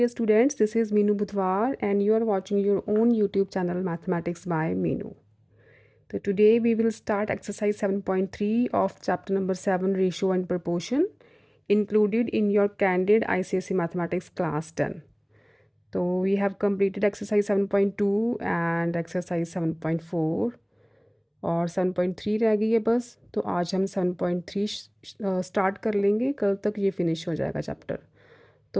students, this is Meenu Budhwar and you are watching your own YouTube channel Mathematics by Meenu. So today we will start exercise 7.3 of chapter number 7 Ratio and Proportion included in your Candid ICSE Mathematics class 10. So we have completed exercise 7.2 and exercise 7.4 और 7.3 रह गई है बस। तो आज हम 7.3 start कर लेंगे, कल तक ये फिनिश हो जाएगा चैप्टर।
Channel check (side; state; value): both; identical; correlation 1.00